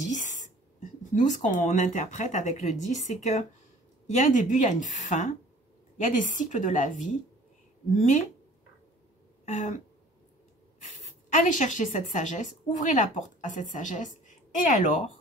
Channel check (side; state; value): both; normal; correlation 0.50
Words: nous, ce qu'on interprète avec le 10, c'est qu'il y a un début, il y a une fin, il y a des cycles de la vie, mais allez chercher cette sagesse, ouvrez la porte à cette sagesse, et